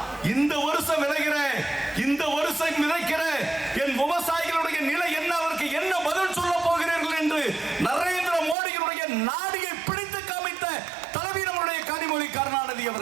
இந்த வருஷம் விளைகிற இந்த வருஷம் விதைக்கிற என் விவசாயிகளுடைய நிலை என்ன, அவருக்கு என்ன பதில் சொல்ல போகிறீர்கள் என்று நரேந்திர மோடியினுடைய நாடியை பிடித்து காமித்த தலைவி நம்முடைய கனிமொழி கருணாநிதி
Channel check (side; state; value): left; drops out; at 8.6 s